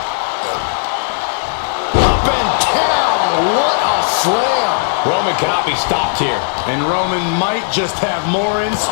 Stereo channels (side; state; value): right; silent; 69 dB below the other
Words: Up and down, what a slam. Roman cannot be stopped here. And Roman might just have more in